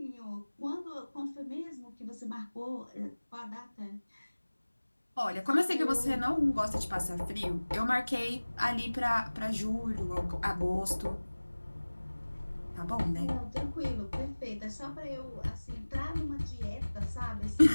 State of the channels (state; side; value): inverted; both; correlation -1.00